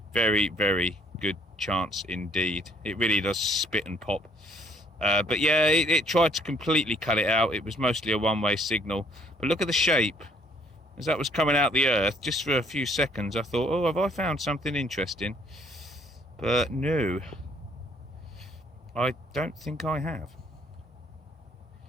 Very, very good chance indeed. It really does spit and pop. But yeah, it tried to completely cut it out. It was mostly a one-way signal. But look at the shape. As that was coming out the earth, just for a few seconds, I thought, oh, have I found something interesting? But no, I don't think I have.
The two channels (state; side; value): normal; both; correlation 0.63